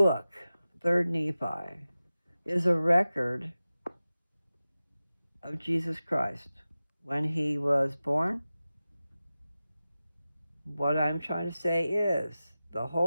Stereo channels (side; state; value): both; inverted; correlation -0.95